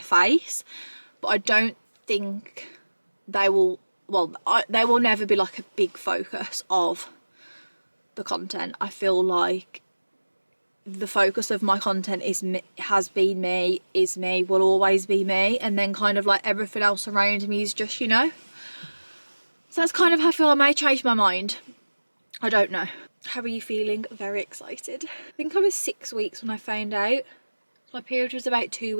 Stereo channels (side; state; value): both; inverted; correlation -1.00